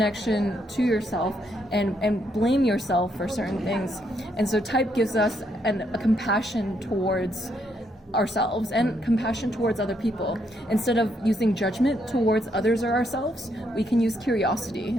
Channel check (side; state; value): both; normal; correlation 0.75